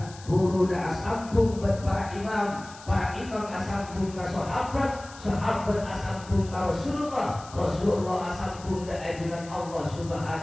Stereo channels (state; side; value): noise; left; hiss, 19 dB below the sound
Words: asambung para imam asambung ka sahabat asambung ka Rasulullah asambung ka ajunan Allah